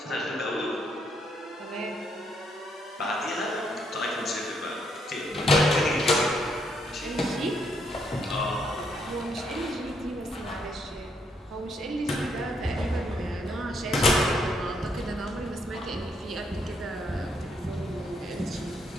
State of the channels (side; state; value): both; normal; correlation 0.74